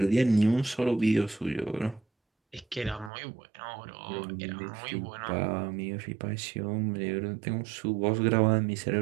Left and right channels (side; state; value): left; drops out; at 3.1 s